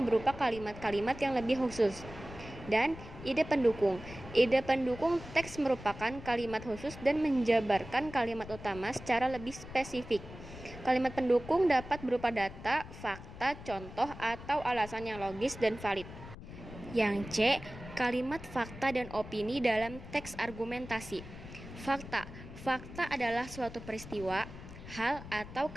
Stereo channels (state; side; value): noise; left; rumble, 14 dB below the sound